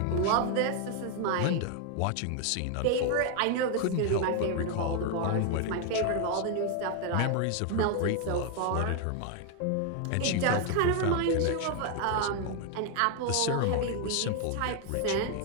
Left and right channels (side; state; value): both; different; correlation 0.01